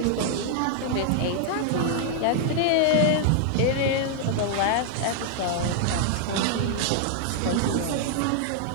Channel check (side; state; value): both; different; correlation -0.01